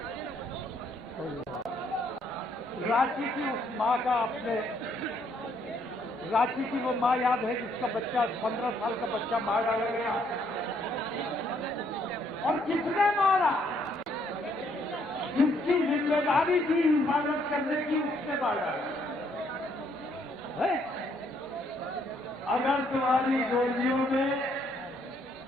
رانچی کی اس ماں کا، اپنے رانچی کی وہ ماں یاد ہے جس کا بچہ 15 سال کا بچہ مار ڈالا گیا، اور کس نے مارا؟ جس کی ذمہ داری تھی حفاظت کرنے کی، اس نے مار ڈالا. اگر تمہاری گولیوں میں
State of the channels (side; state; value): both; normal; correlation 0.69